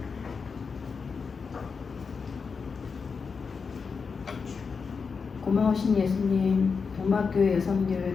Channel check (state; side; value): quieter; right; 5.3 dB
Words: 고마우신 예수님, 동막교회